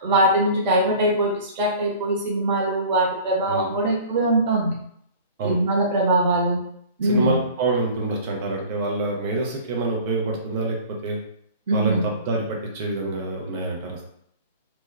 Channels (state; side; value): inverted; both; correlation -0.43